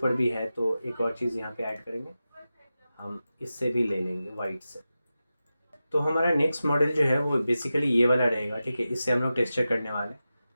भी है तो एक और चीज़ यहाँ पे ऐड करेंगे, हम इससे भी ले लेंगे वाइट से। तो हमारा नेक्स्ट मॉडल जो है वो बेसिकली ये वाला रहेगा, ठीक है। इससे हम लोग टेक्सचर करने वाले हैं।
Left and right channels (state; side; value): inverted; both; correlation -0.93